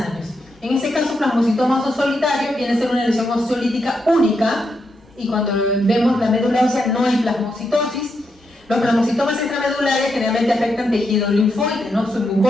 En este caso, plasmocitoma óseo solitario viene a ser una lesión osteolítica única, y cuando vemos la médula ósea no hay plasmocitosis. Los plasmocitomas extramedulares generalmente afectan tejido linfoide, ¿no?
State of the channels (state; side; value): normal; both; correlation 0.82